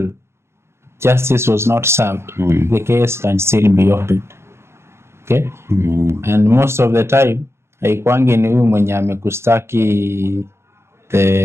justice was not served, the case can still be opened. Okay? And most of the time haikuangi ni huyu mwenye amekustaki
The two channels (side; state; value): left; late; 0.13 ms